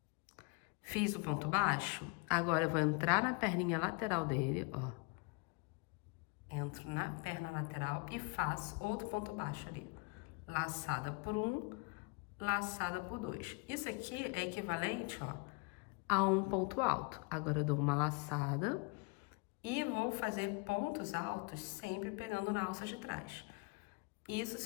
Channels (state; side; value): quieter; right; 30.8 dB